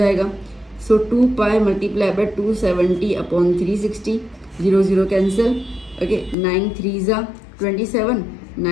सो 2 पाई multiply bye 270 upon 360, 0 0 cancel. Okay, 9 3 जा 27,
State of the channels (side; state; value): right; drops out; at 6.4 s